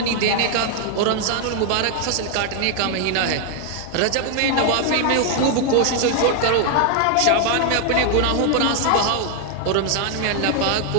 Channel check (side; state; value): both; different; correlation 0.00